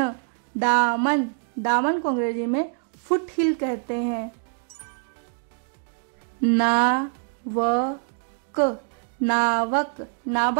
दामन, दामन को अंग्रेजी में फुट हिल कहते हैं। नावक, नावक,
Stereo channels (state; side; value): silent; left; 62 dB below the other